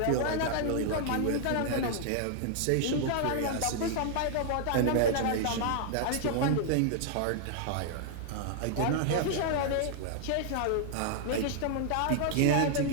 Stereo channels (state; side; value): different; both; correlation -0.01